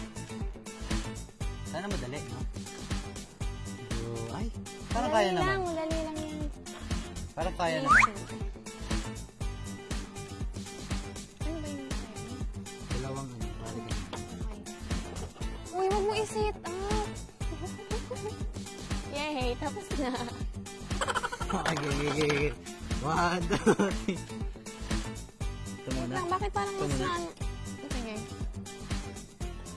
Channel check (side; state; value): both; identical; correlation 1.00